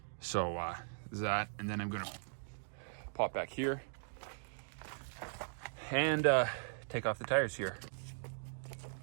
So that, and then I'm gonna pop back here and take off the tires here.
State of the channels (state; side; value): silent; left; digital silence